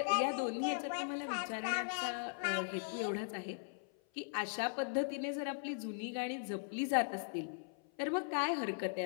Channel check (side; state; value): right; silent; 52 dB below the other